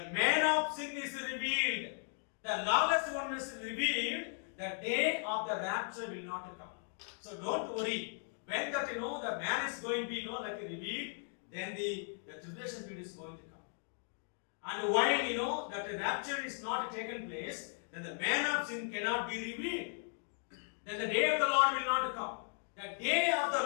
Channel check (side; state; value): right; silent; 53 dB below the other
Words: man of sin is revealed. The lawless one is revealed, the day of the rapture will not come. So don't worry. When that the man is going to be revealed, then the tribulation period is going to come. And while that the rapture is not taken place, then the man of sin cannot be revealed. Then the day of the Lord will not come. The day of